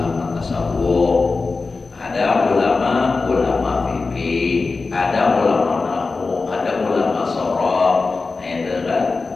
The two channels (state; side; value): quieter; right; 4.0 dB